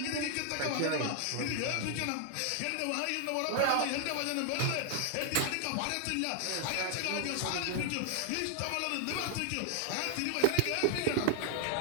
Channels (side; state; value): both; different; correlation 0.00